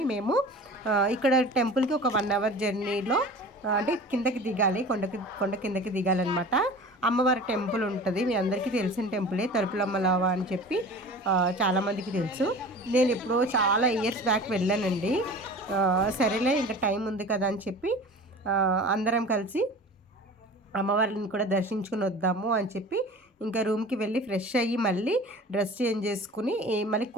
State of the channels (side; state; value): both; normal; correlation 0.39